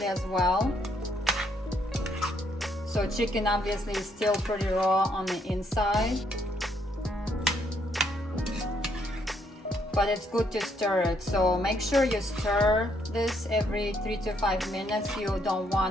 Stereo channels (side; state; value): both; normal; correlation 0.71